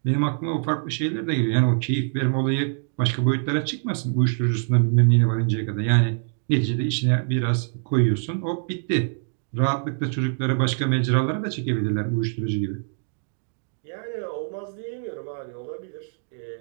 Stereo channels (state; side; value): silent; left; digital silence